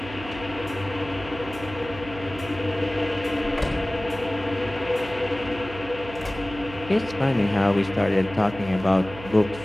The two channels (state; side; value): noise; right; hum, 14 dB below the sound